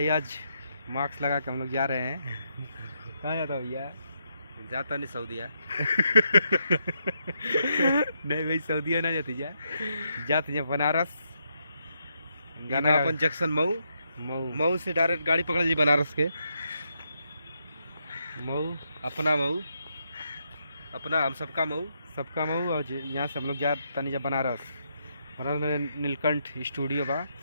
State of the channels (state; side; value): inverted; both; correlation -0.79